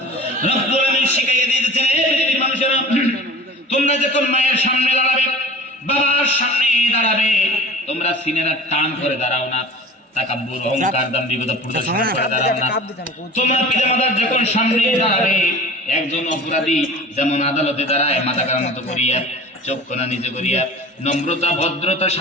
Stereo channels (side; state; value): both; normal; correlation 0.40